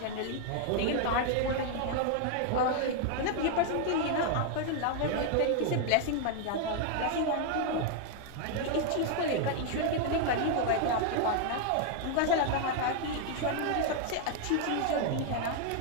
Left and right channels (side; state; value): both; different; correlation 0.00